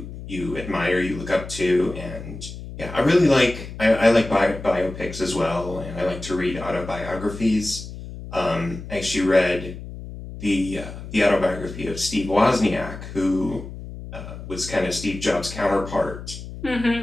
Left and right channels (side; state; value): left; noise; hum, 11 dB below the sound